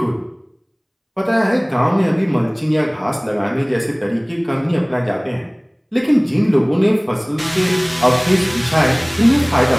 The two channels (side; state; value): both; identical; correlation 1.00